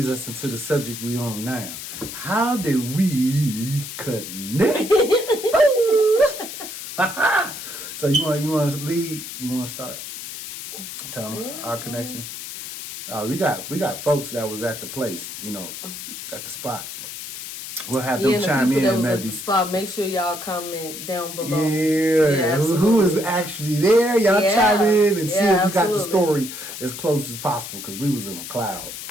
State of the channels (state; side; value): noise; left; hiss, 9 dB below the sound